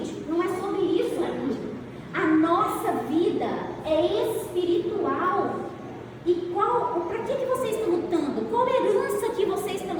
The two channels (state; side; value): identical; both; correlation 1.00